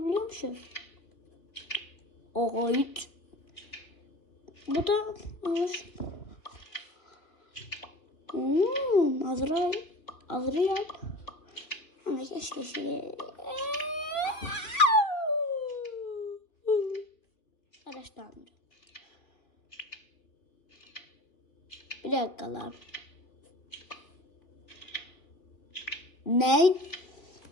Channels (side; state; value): right; late; 2.8 ms